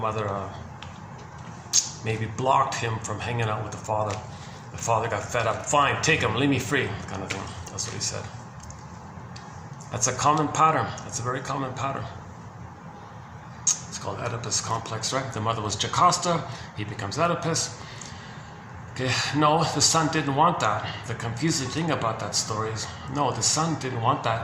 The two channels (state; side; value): identical; both; correlation 1.00